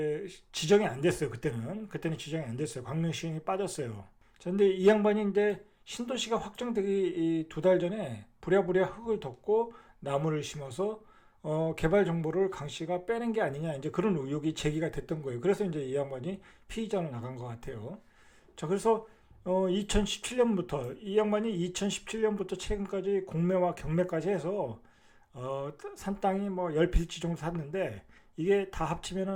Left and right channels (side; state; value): both; identical; correlation 1.00